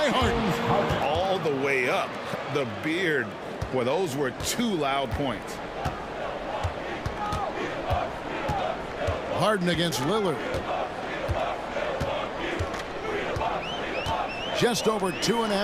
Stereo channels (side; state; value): both; identical; correlation 1.00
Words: Harden. All the way up. The beard. Well, those were 2 loud points. Harden against Lillard. Just over